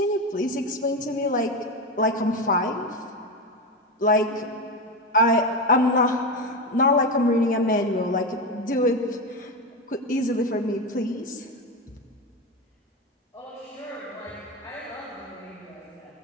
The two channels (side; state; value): both; normal; correlation 0.16